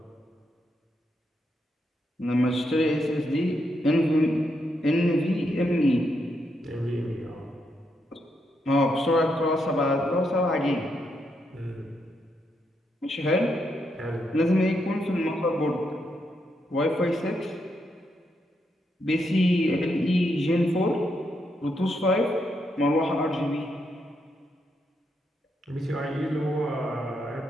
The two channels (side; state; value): both; normal; correlation 0.80